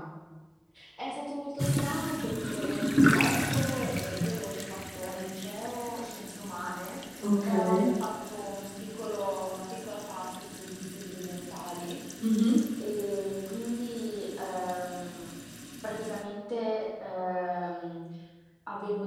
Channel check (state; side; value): identical; both; correlation 1.00